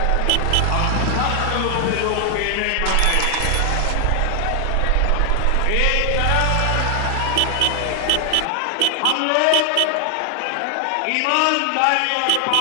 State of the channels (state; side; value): different; both; correlation 0.00